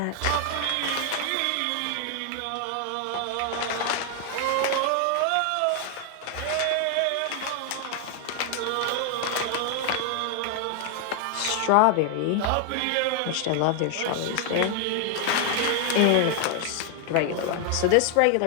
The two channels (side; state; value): both; different; correlation 0.00